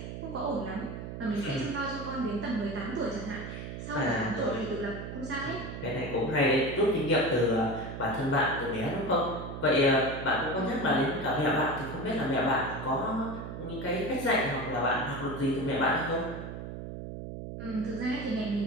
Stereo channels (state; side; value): noise; right; hum, 8 dB below the sound